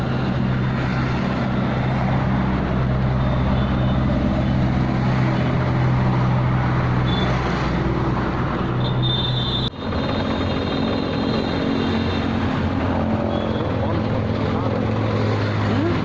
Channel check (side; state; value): both; identical; correlation 1.00